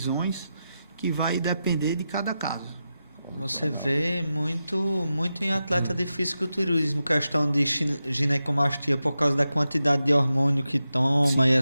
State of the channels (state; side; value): inverted; both; correlation -0.90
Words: que vai depender de cada caso. Você vê muito em atleta de fisiculturismo, questão de ginecomastia por causa da quantidade de hormônio que toma. Sim. E